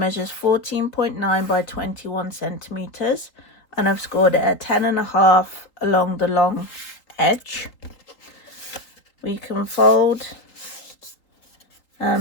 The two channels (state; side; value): late; right; 3.8 ms